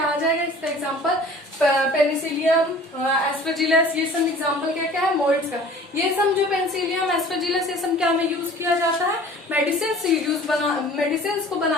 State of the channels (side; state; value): both; normal; correlation 0.47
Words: आ जाएगा, इसका एग्जाम्पल पेनिसिलियम, एस्परजिलस, ये सब एग्जांपल क्या क्या है मोल्ड्स का। ये सब जो पेनिसिलियम, एस्परजिलस, ये सब क्या में यूज किया जाता है, मेडिसिन को